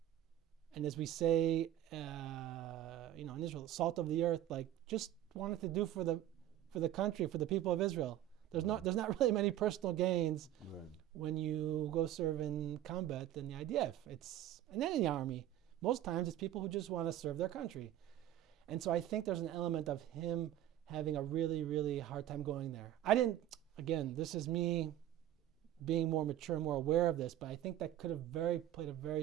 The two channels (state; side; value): quieter; left; 12.6 dB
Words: And as we say, in Israel, salt of the earth, like just wanted to do for the country, for the people of Israel. There's not really many personal gains when you go serve in combat in the IDF. And then in the army, most times it's people who just want to serve their country. And so I think there's an element of him having a really, really hard time going there. Again, this is me being more mature, more aware of this, but I think that could have played a